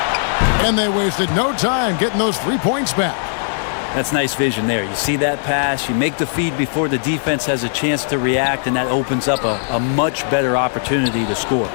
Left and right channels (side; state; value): right; silent; digital silence